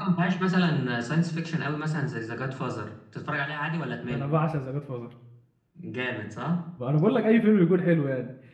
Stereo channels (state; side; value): identical; both; correlation 1.00